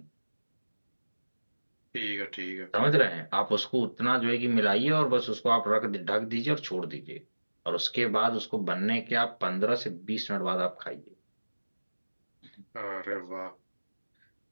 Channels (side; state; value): both; inverted; correlation -1.00